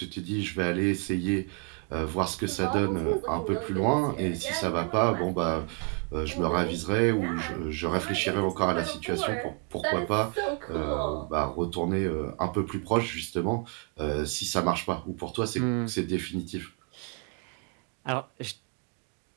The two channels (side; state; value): left; quieter; 39.0 dB